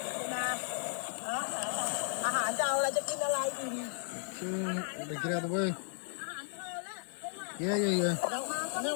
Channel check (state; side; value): silent; right; digital silence